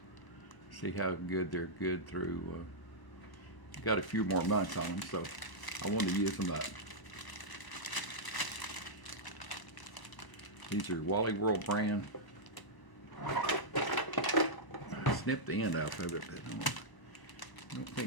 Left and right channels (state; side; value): late; right; 1.0 ms